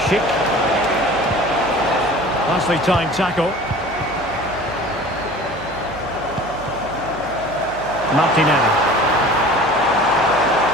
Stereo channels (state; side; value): noise; right; hum, 16 dB below the sound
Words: Schick. Nicely timed tackle. Martinelli.